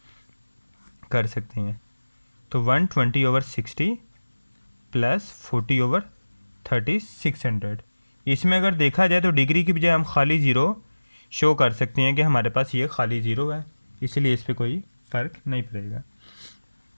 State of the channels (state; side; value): inverted; both; correlation -1.00